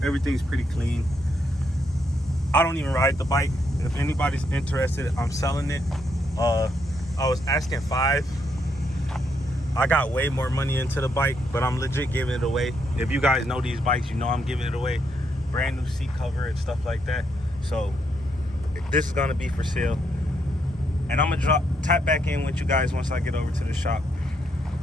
Everything's pretty clean. I don't even ride the bike. If anybody's interested, I'm selling it. I was asking $5,000. I got way more money into the bike, but I'm legit giving it away. If you guys know these bikes, you know I'm giving it away. Brand new seat cover and stuff like that. So this is gonna be for sale. And I'm gonna tap back in with you guys once I get over to the shop.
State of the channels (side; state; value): both; normal; correlation 0.76